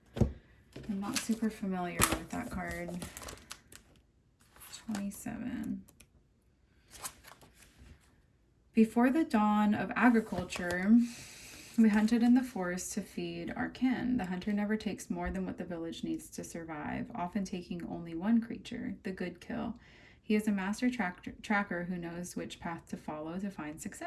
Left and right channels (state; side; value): identical; both; correlation 1.00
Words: I'm not super familiar with that card. 27. Before the dawn of agriculture, we hunted in the forest to feed our kin. The hunter never takes more than what the village needs to survive, often taking only one creature, the good kill. He is a master tracker who knows which path to follow to find